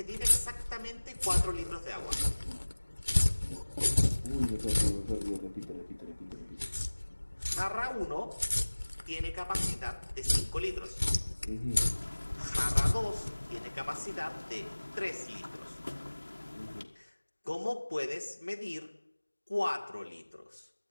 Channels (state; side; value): inverted; both; correlation -1.00